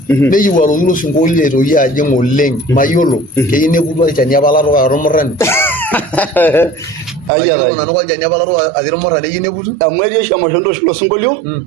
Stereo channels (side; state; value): left; drops out; at 7.3 s